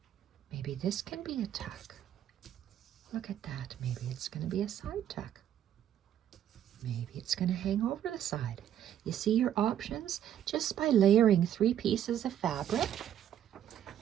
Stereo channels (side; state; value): left; quieter; 10.5 dB